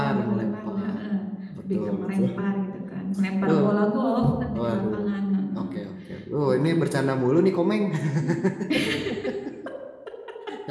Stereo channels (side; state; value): both; identical; correlation 1.00